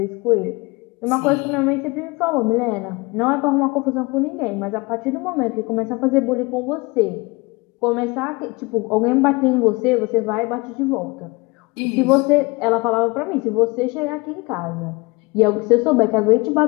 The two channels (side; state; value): right; quieter; 25.4 dB